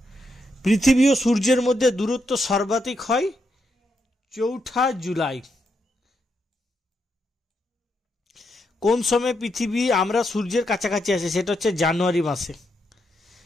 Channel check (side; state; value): both; normal; correlation 0.81